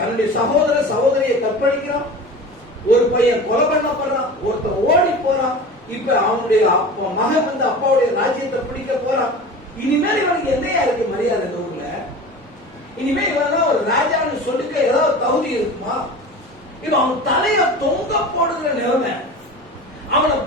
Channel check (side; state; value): both; normal; correlation 0.35